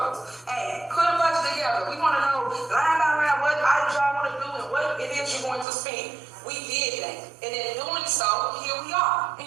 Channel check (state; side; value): drops out; left; at 5.7 s